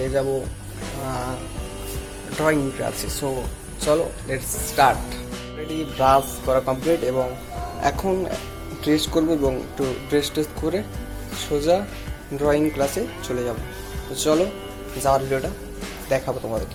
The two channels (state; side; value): identical; both; correlation 1.00